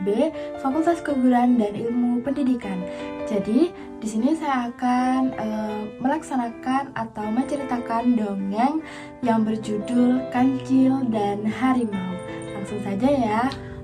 B, Fakultas Keguruan dan Ilmu Pendidikan. Jadi, di sini saya akan melaksanakan atau menceritakan dongeng yang berjudul Kancil dan Harimau. Langsung saja ya.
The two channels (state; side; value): identical; both; correlation 1.00